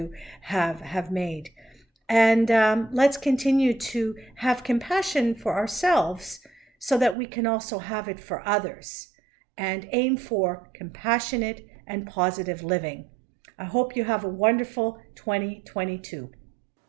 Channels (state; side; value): drops out; left; at 7.2 s